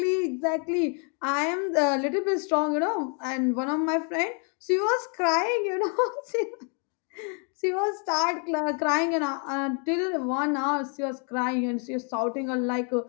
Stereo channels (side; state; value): right; quieter; 39.7 dB